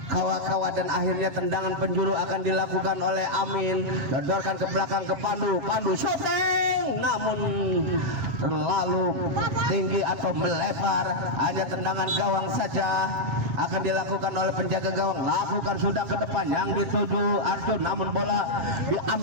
kawa-kawa, dan akhirnya tendangan penjuru akan dilakukan oleh Amin. Dodorkan ke belakang ke Pandu shooting, namun terlalu tinggi atau melebar, hanya tendangan gawang saja, akan dilakukan oleh penjaga gawang. Lakukan sudah ke depan yang dituju Arjun, namun bola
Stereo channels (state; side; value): late; left; 7.2 ms